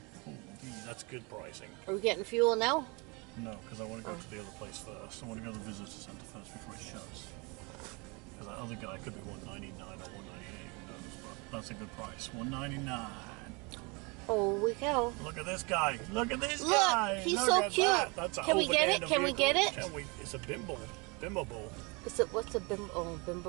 Oh, that's good pricing. Are we getting fuel now? No, because I want to go to the other place first. I want to go to the visitor centre first before it shuts. Because that other guy could be $1.99 or $1.98. Who knows? But that's a good price. $1.99. Holy cow! Look at this guy! Look at this Look, guy! he's Look so at cute. that. That's Can we get it? Can we get it? Can we? It's a bimble. Bimmable. What's a bimbo? Oh,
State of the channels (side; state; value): left; quieter; 29.3 dB